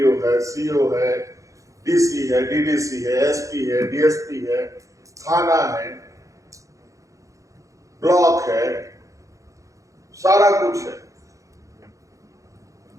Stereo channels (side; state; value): left; late; 0.16 ms